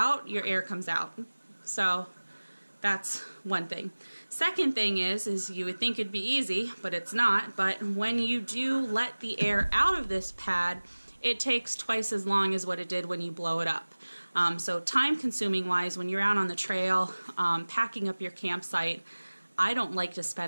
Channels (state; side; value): inverted; both; correlation -1.00